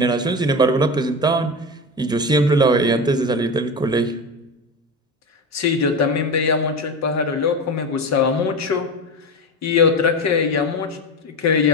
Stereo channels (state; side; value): normal; both; correlation 0.22